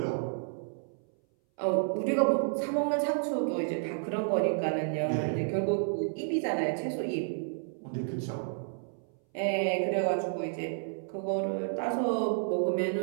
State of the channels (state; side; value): silent; left; 57 dB below the other